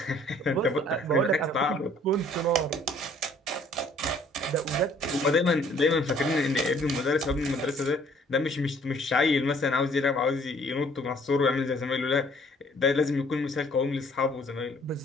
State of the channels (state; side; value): normal; both; correlation 0.58